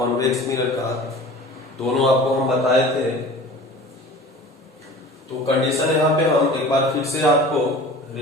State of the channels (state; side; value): normal; both; correlation 0.41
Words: मिरर का, दोनों आपको हम बताए थे। तो कंडीशन यहाँ पे हम एक बार फिर से आपको